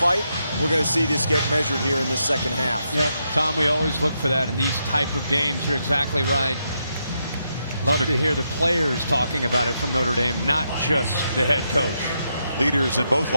We're going to see this get measured here in this second half. Yep, Tom, we always look for that in these type of games. You're exactly right. Love to hear the players talking about it from Notre Dame, not just the head coach. Leaders in both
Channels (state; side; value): inverted; both; correlation -0.82